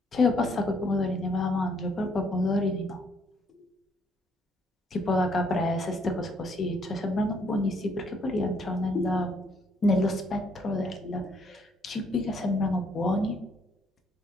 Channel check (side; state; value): both; normal; correlation 0.68